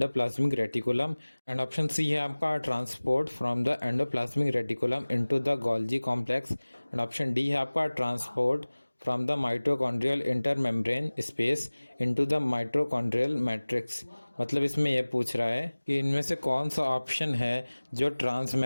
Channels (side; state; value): both; inverted; correlation -1.00